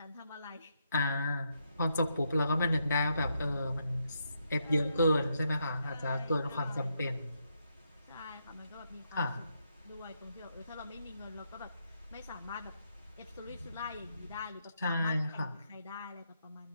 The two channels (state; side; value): inverted; both; correlation -0.80